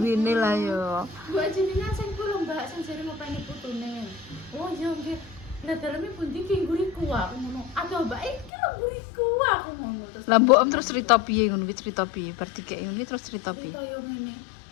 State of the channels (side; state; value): right; drops out; at 8.5 s